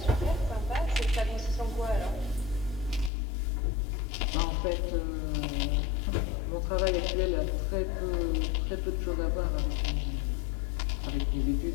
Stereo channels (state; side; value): drops out; right; at 3.1 s